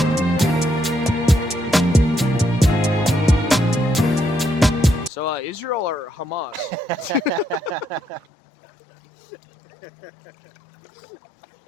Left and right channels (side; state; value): right; drops out; at 8.2 s